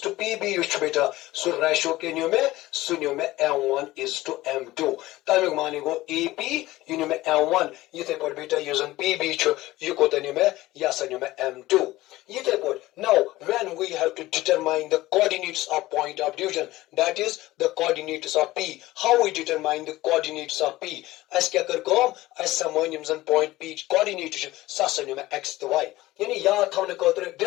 to P B बेटा सह रेशो क्या न्यू मे m1 इज टू m2 तमिक मानी गो ए पी यह न्यू मे m1 ये पे बेटा यह जन पी बी यह कोत न्यू मे यह न्यू मे m2 ये पे now when we have to determine the coordinates of point of division that is the coordinates of p how we determine the coordinates of p अस क्या कर अस समन यम जन पॉइंट पी कोऑर्डिनेट सह मे x तो y यानी याद थवन खतर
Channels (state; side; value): quieter; right; 17.6 dB